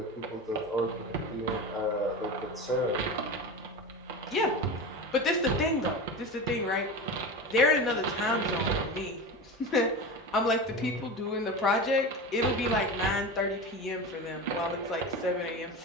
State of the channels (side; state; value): both; normal; correlation 0.26